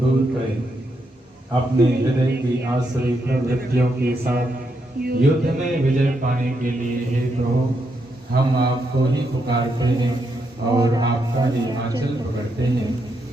करें। अपने हृदय की आसुरी प्रवृत्तियों के साथ युद्ध में विजय पाने के लिए हे प्रभु हम आपको ही पुकारते हैं और आपका ही आंचल पकड़ते हैं।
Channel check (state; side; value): normal; both; correlation 0.81